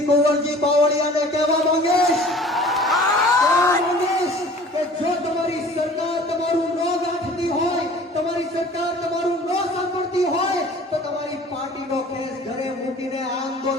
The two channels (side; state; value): both; normal; correlation 0.47